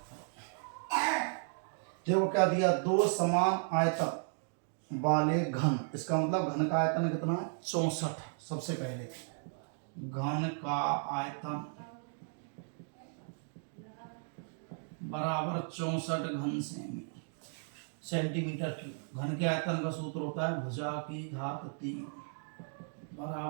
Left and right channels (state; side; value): silent; left; 54 dB below the other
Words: देखो क्या दिया? दो समान आयतन वाले घन, इसका मतलब घन का आयतन कितना है? 64। सबसे पहले घन का आयतन बराबर 64 घन सेमी सेंटीमीटर क्यूब। घन के आयतन का सूत्र होता है भुजा की घात 3